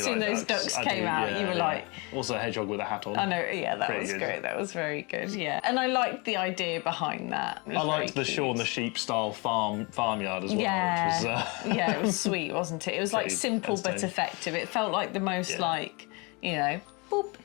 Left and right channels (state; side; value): quieter; right; 29.2 dB